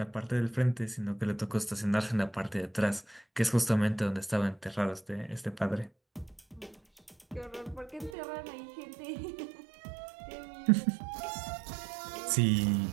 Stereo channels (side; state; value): left; drops out; at 8.2 s